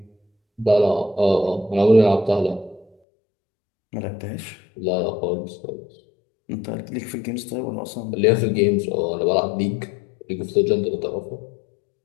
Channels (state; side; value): drops out; right; at 2.9 s